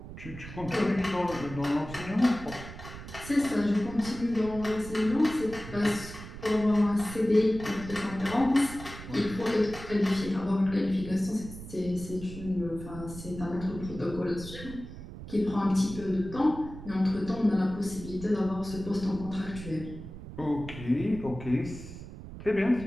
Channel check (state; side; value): noise; right; rumble, 12 dB below the sound